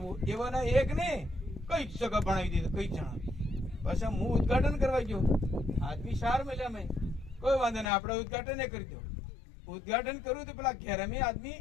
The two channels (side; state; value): right; drops out; at 7.9 s